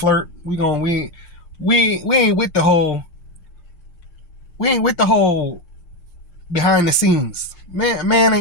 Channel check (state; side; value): late; right; 6.6 ms